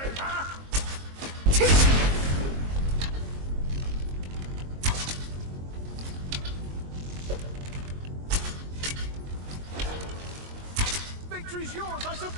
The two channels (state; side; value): late; left; 22 ms